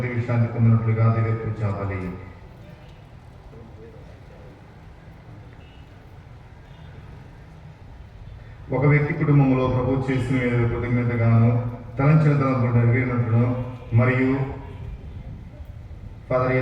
విశ్రాంతి పొందినట్లుగా దివ్య పూజా బలి. ఒక వ్యక్తి కుటుంబంలో ప్రభు చేసిన మేలు కృతజ్ఞతగాను తలంచిన తలంపులు నెరవేరినట్లును మరియు ఫాదర్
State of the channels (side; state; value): both; identical; correlation 1.00